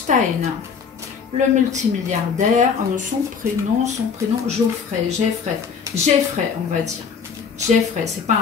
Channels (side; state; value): right; quieter; 6.2 dB